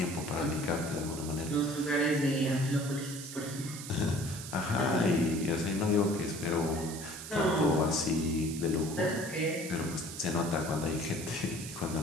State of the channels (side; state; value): right; noise; hiss, 10 dB below the sound